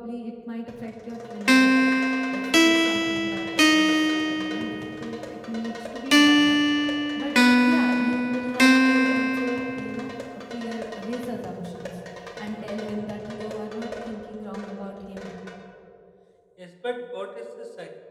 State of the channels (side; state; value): both; identical; correlation 1.00